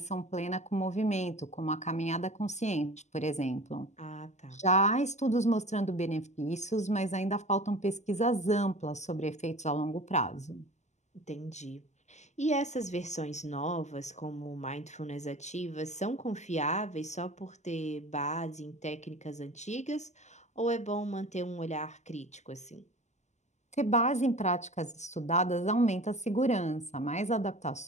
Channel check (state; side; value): late; right; 0.33 ms